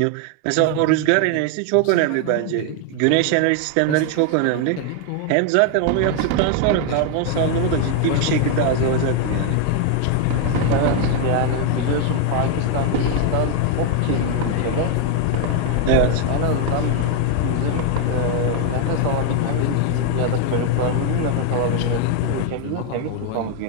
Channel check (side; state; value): both; different; correlation 0.00